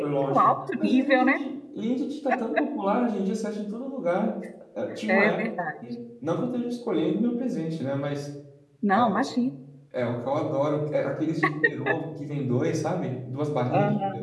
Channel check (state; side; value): identical; both; correlation 1.00